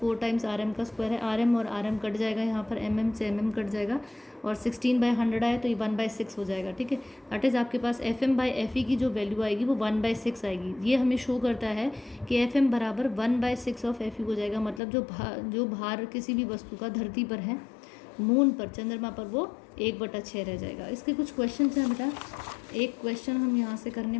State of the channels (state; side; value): drops out; right; at 14.8 s